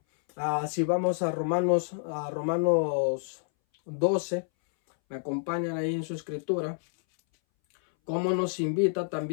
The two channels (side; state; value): right; silent; 59 dB below the other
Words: Si vamos a Romanos 12, me acompañan ahí en su escritura, cómo nos invita